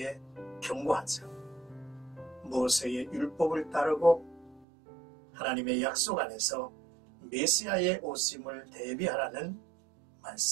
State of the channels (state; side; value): drops out; left; at 4.7 s